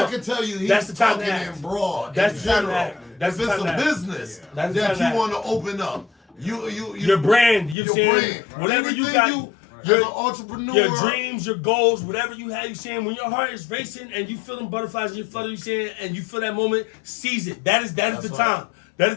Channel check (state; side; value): drops out; right; at 7.8 s